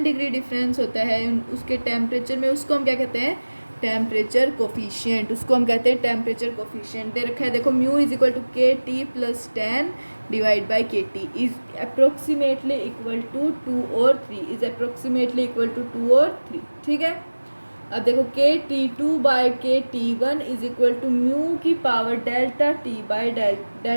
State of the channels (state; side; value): inverted; both; correlation -1.00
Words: डिग्री डिफरेंस होता है उसके टेम्परेचर में, उसको हम क्या कहते हैं, टेम्परेचर कोफिशिएंट। उसको हम कहते हैं टेम्परेचर कोफिशिएंट। दे रखा है देखो, mu is equal to K T plus 10 divide by K T is approximately equal to 2 और 3, इज अप्रोक्सीमेटली इक्वल टू 2 और 3, ठीक है। अब देखो K T 2 by K T 1 is equal to mu की power delta T by